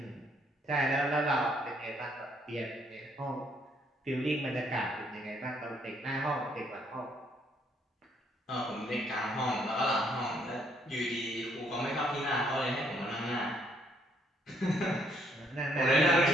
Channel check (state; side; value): normal; both; correlation 0.69